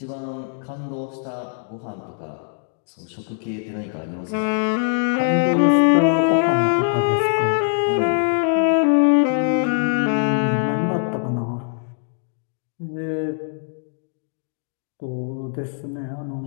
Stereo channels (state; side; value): silent; right; digital silence